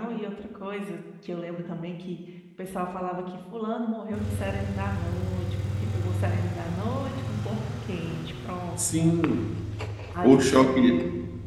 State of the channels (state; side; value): identical; both; correlation 1.00